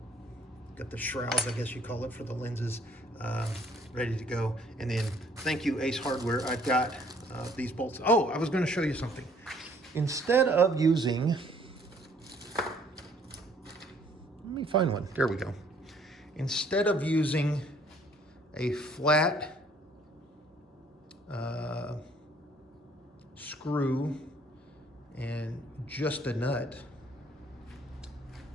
got the shrouds, I guess you call it, for the lenses, ready to go. And then, thank you, Ace Hardware, I've got these bolts. Oh, I was gonna show you something. Instead of using, let me find one, there we go. Instead of using a flat screw and just a nut,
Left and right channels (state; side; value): normal; both; correlation 0.61